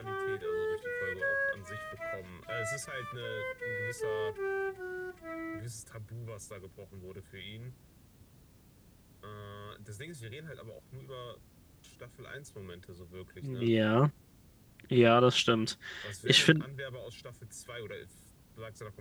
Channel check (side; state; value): both; identical; correlation 1.00